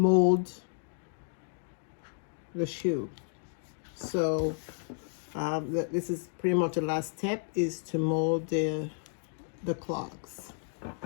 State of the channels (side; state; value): right; silent; 56 dB below the other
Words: the shoe. So this is pretty much the last step, is to mold the clogs.